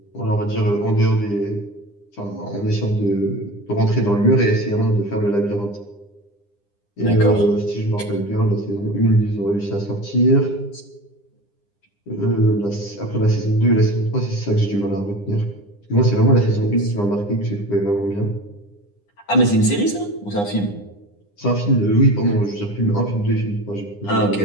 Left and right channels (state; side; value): late; right; 9.9 ms